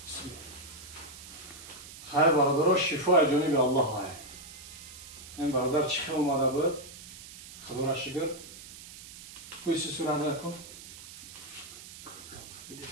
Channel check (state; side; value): noise; right; hiss, 15 dB below the sound